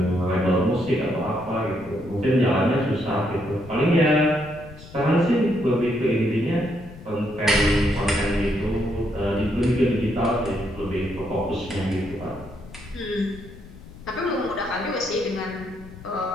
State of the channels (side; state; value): left; noise; rumble, 17 dB below the sound